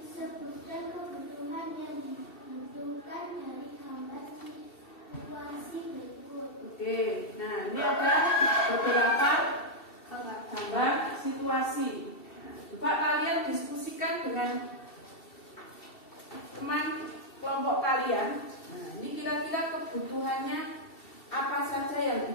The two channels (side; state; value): right; late; 2.7 ms